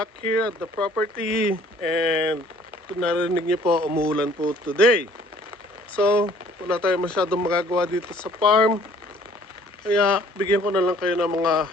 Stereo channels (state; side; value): normal; both; correlation 0.56